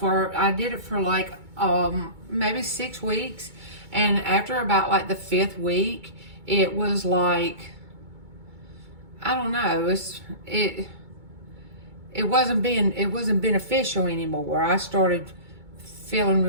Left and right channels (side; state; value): left; late; 2.2 ms